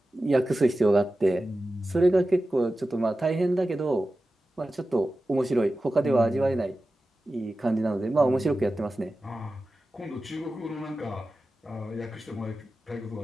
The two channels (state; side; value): normal; both; correlation 0.94